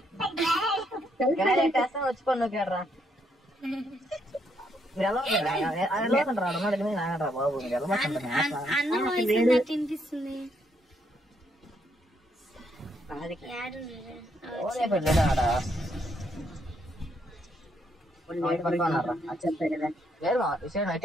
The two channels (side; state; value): both; normal; correlation 0.74